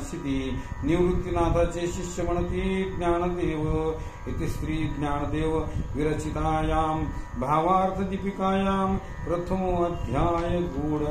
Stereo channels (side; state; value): both; identical; correlation 1.00